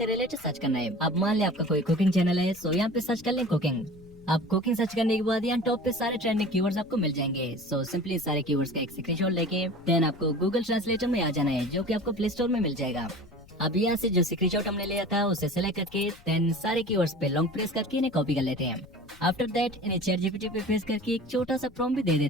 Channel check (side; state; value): left; noise; rumble, 25 dB below the sound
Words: रिलेटेड सर्च करना है। अब मान लिया आपका कोई कुकिंग चैनल है, सो यहाँ पे सर्च कर लें कुकिंग। आप कुकिंग सर्च करने के बाद यहाँ टॉप पे सारे ट्रेंडिंग कीवर्ड्स आपको मिल जाएंगे। सो सिंपली सारे कीवर्ड्स का एक स्क्रीनशॉट लेके देन आपको गूगल ट्रांसलेटर में आ जाना है, जो कि आपको प्ले स्टोर में मिल जाएगा। अब यहाँ से जो स्क्रीनशॉट हमने लिया था उसे सेलेक्ट करके देन सारे कीवर्ड्स पे लॉन्ग प्रेस करके इन्हें कॉपी कर लेते हैं। आफ्टर दैट इन्हें चैट जीपीटी पे पेस्ट करके एक छोटा सा प्रॉम्प्ट भी दे